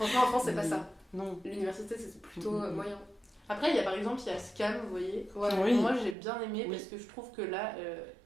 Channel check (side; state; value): left; drops out; at 6.2 s